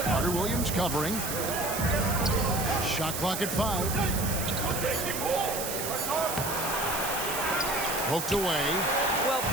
Carter-Williams covering. Shot clock at 5. Poked away. Well,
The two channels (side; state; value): right; noise; hiss, 4 dB below the sound